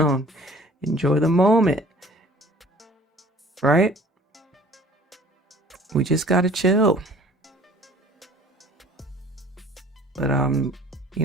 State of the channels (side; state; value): both; normal; correlation 0.51